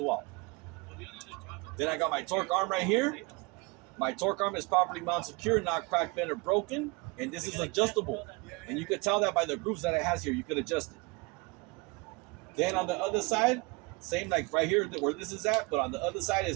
well. Then I got my torque arm right here. My torque arm is properly mounted secure, not cracked, bent, or broken. And this is adjustable. And you could tell that by the grooves that it has here. You could adjust it. Then on the other side, same like right here where this is at, but on the other side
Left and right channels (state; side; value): quieter; left; 27.3 dB